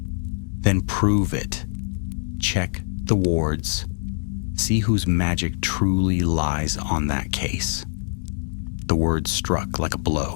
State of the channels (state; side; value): silent; right; digital silence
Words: "Then prove it. Check the wards. See whose magic truly lies on that case." The words struck like a